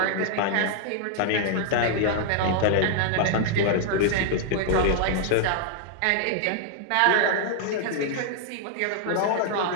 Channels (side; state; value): both; different; correlation -0.01